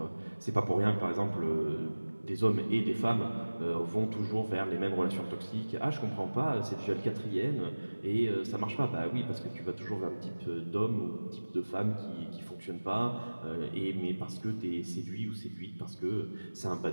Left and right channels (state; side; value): inverted; both; correlation -1.00